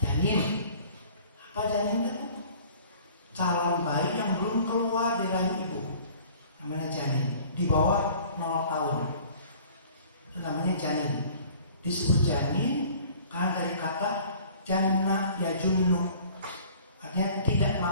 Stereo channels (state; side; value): inverted; both; correlation -0.49